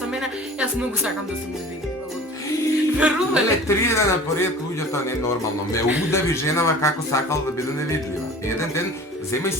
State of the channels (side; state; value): both; normal; correlation 0.43